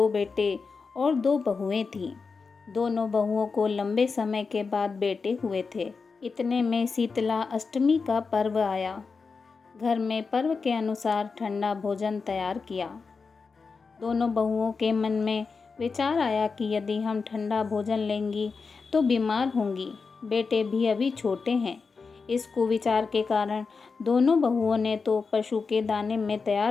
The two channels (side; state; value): right; quieter; 4.8 dB